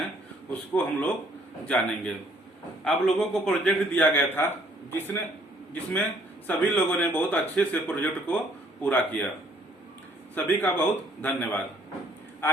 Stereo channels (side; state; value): both; normal; correlation 0.62